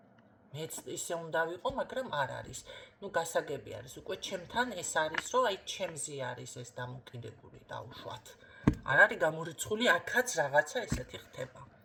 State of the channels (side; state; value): both; identical; correlation 1.00